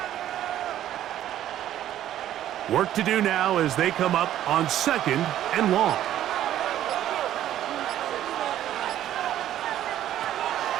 Work to do now as they come up on 2nd and long.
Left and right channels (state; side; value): quieter; left; 12.0 dB